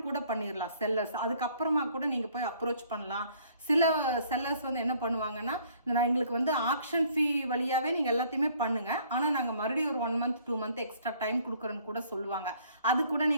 கூட பண்ணிடலாம் செல்லர்ஸ். அதுக்கப்புறமா கூட நீங்கள் போய் அப்ரோச் பண்ணலாம். சில செல்லர்ஸ் வந்து என்ன பண்ணுவாங்கன்னா, நான் எங்களுக்கு வந்து ஆக்ஷன் ஃபீ வழியாகவே நீங்கள் எல்லாத்தையுமே பண்ணுங்கள், ஆனால் நாங்கள் மறுபடியும் ஒரு 1 month 2 month எக்ஸ்ட்ரா டைம் கொடுக்குறேன்னு கூட சொல்லுவாங்க. அது கூட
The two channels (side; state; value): both; inverted; correlation -0.59